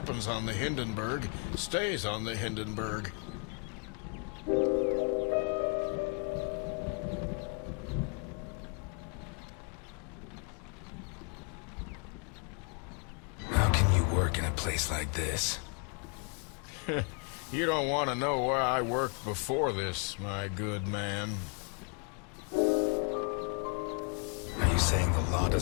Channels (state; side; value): quieter; right; 38.6 dB